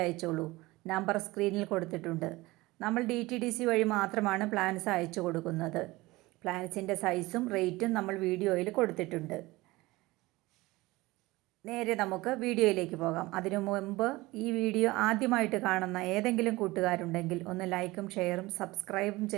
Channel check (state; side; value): quieter; left; 20.4 dB